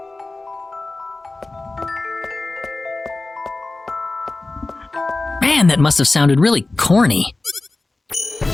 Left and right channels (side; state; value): right; quieter; 3.2 dB